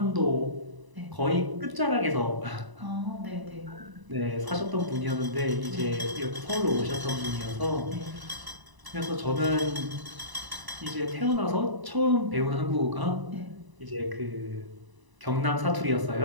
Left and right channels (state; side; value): late; left; 1.0 ms